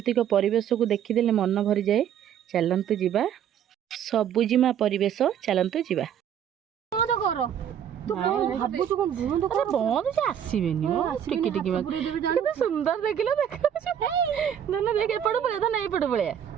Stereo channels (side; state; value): left; quieter; 9.3 dB